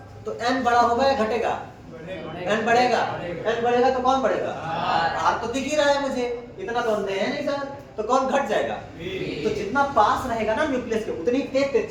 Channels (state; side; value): identical; both; correlation 1.00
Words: तो n बड़ा होगा या घटेगा? n बढ़ेगा तो कौन बढ़ेगा? r तो दिख ही रहा है मुझे, इतना तो अंधे है नहीं सर, तो कौन घट जाएगा? तो जितना पास रहेगा ना न्यूक्लियस के, उतनी तेज